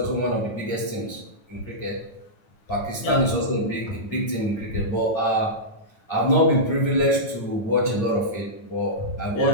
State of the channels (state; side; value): late; right; 9.5 ms